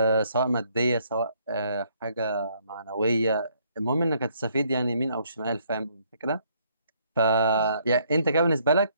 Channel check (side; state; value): both; inverted; correlation -0.68